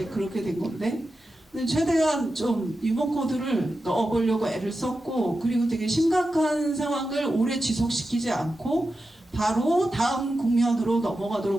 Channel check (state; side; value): normal; both; correlation 0.91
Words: 그렇게 된 건데, 근데 최대한 좀 유머 코드를 넣어보려고 애를 썼고, 그리고 되게 심각한 상황을 오래 지속시키지 않고 바로 다음 국면으로